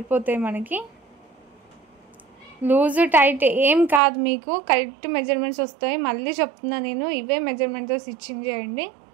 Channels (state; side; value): drops out; left; at 4.0 s